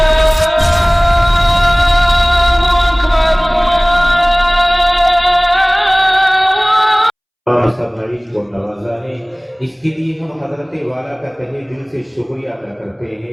کو نوازا ہے، اس کے لیے ہم حضرت والا کا تہہ دل سے شکریہ ادا کرتے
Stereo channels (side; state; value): both; identical; correlation 1.00